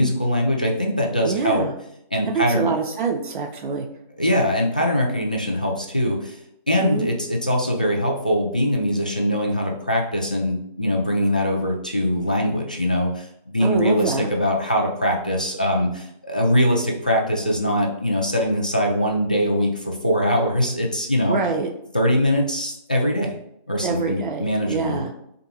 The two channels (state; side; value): inverted; both; correlation -0.64